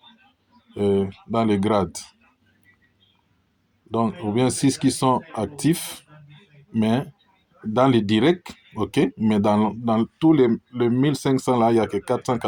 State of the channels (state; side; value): identical; both; correlation 1.00